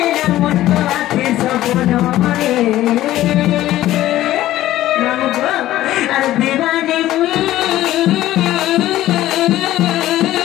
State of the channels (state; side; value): quieter; right; 14.5 dB